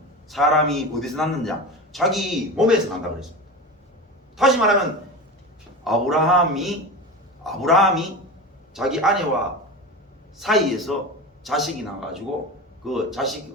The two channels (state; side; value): normal; both; correlation 0.26